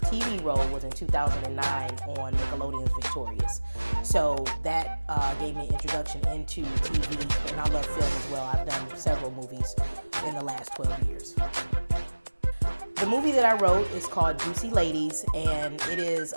TV role was in 2009 on Nickelodeon's Victorious. So that gave me an introduction into TV, and I love film as well. I've done several movies in the last 12 years. The movie that I wrote is called Juicy Ladies, and it is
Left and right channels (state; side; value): inverted; both; correlation -1.00